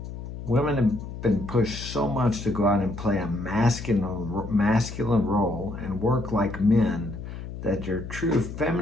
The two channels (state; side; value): noise; left; hum, 10 dB below the sound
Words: Women have been pushed so much to go out and play a masculine role and work like men that your true